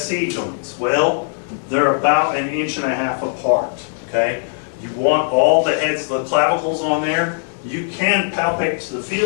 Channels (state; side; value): silent; right; 59 dB below the other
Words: SC joints? Well, they're about 1.5 inches apart, okay? You want all the heads, the clavicles on there. You can palpate to the